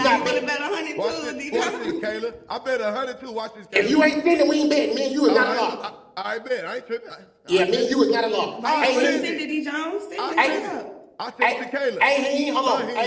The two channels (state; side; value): identical; both; correlation 1.00